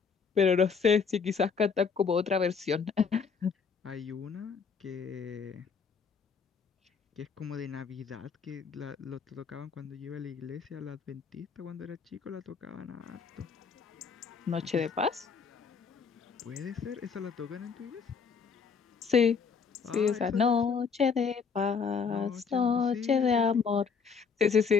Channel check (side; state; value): right; quieter; 5.8 dB